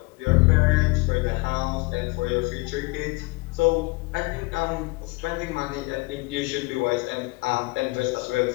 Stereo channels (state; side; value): quieter; right; 25.2 dB